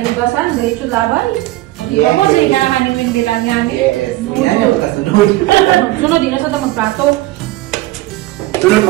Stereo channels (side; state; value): left; quieter; 17.8 dB